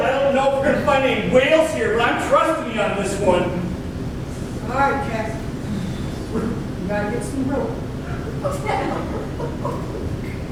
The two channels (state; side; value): identical; both; correlation 1.00